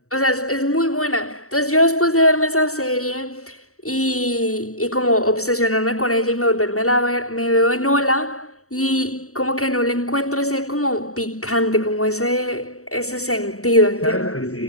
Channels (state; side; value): late; right; 0.64 ms